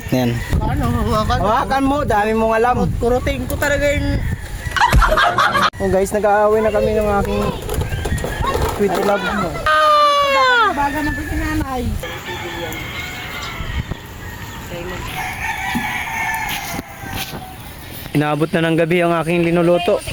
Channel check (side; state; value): both; identical; correlation 1.00